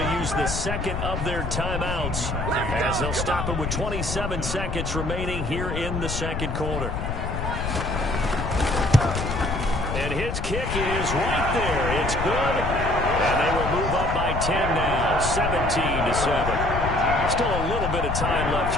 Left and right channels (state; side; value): noise; left; rumble, 3 dB below the sound